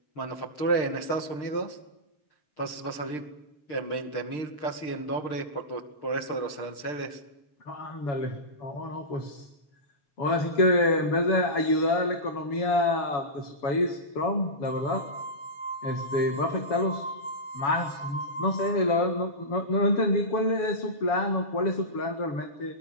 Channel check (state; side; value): late; right; 6.6 ms